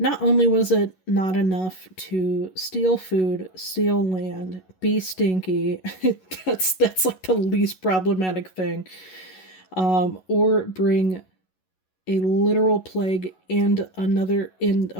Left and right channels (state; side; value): late; right; 11 ms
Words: only was it not enough to steal food, steal land, be stinky, that's like the least problematic thing, or bring a literal plague and